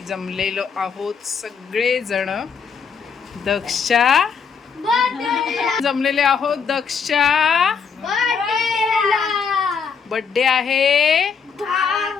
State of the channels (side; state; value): right; quieter; 6.2 dB